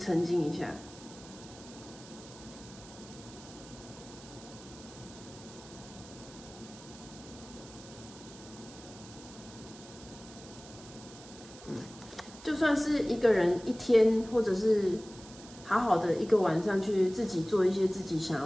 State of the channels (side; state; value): right; noise; hiss, 18 dB below the sound